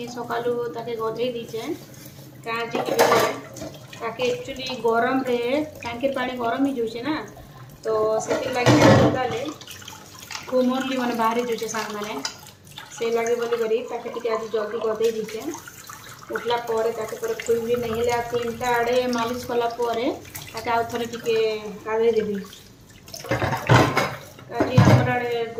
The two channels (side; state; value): both; identical; correlation 1.00